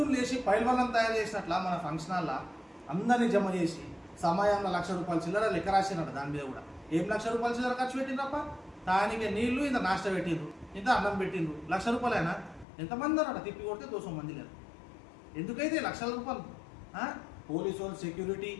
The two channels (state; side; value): drops out; right; at 12.7 s